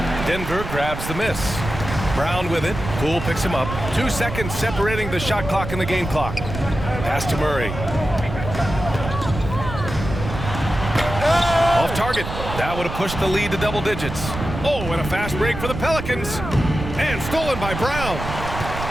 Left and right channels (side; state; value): right; noise; rumble, 7 dB below the sound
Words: Denver grabs the miss. Brown with it. Poole picks him up. 2 seconds separating the shot clock and the game clock. Pass to Murray. Off target. That would have pushed the lead to double digits. Oh, and a fast break for the Pelicans. And stolen by Brown.